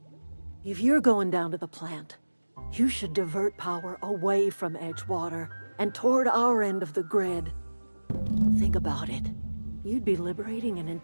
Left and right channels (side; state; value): both; inverted; correlation -1.00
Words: If you're going down to the plant, you should divert power away from Edgewater and toward our end of the grid. Think about it. You'd be liberating an